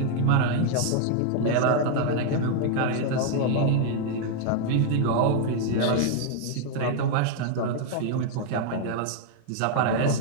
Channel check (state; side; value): different; both; correlation 0.00